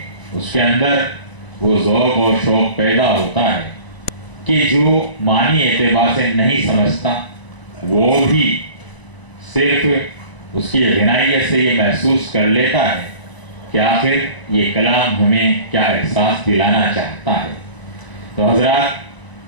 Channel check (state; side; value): late; right; 1.0 ms